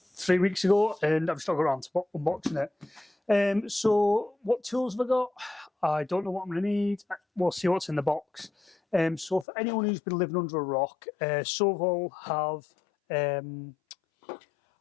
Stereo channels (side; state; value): right; drops out; at 9.5 s